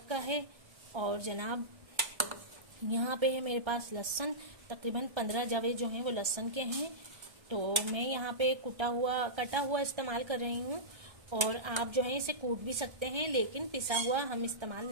का है। और जनाब यहाँ पे है मेरे पास लहसुन, तकरीबन 15 जवे जो हैं वो लहसुन के हैं। तो मैं यहाँ पे कटा हुआ इस्तेमाल कर रही हूँ और आप जो है इसे कूट भी सकते हैं, लेकिन पिसा हुआ हम इस्तेमाल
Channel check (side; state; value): left; late; 1.3 ms